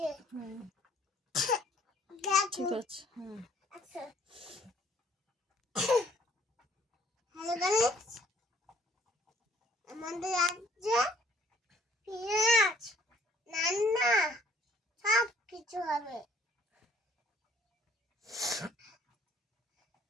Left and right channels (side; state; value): both; normal; correlation 0.60